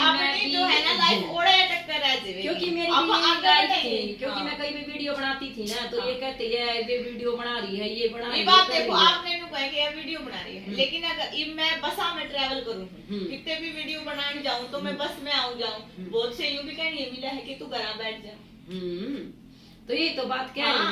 मैं अपनी भी- जो है ना लाइफ ओड़े अटक कर रह जाएगी। क्योंकि मेरी अब भी यही आगे लाइफ बढ़ेंगे। थी, क्योंकि हाँ। मैं कई भी वीडियो बनाती थी ना तो ये कहते है ये वीडियो बना रही है, ये बना रही ये है, बात कर देखो रही है। आपने नु कहा कि ये वीडियो बना रही है, लेकिन अगर इब मैं बसा में ट्रैवल करूं कितने भी वीडियो बनाने जाऊं तो मैं बस में आऊं जाऊं, बहुत से यूं भी कहनी है मिला है कि तू घर बैठ जा। तो ये तो बात कह रही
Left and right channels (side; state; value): both; identical; correlation 1.00